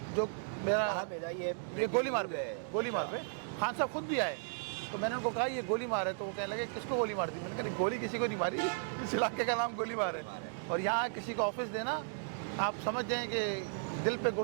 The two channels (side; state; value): left; silent; digital silence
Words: जो मेरा ये गोली मार पे खान साहब खुद भी आए। तो मैंने उनको कहा ये गोली मार है, तो वो कहने लगे किसको गोली मार दी? मैंने कहा गोली किसी को नहीं मारी, इस इलाके का नाम गोली मार है। और यहाँ किसी को ऑफिस देना, आप समझ जाएँ कि दिल